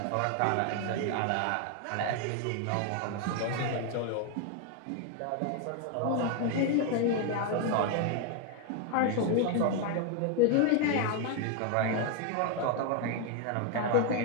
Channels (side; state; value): both; different; correlation 0.01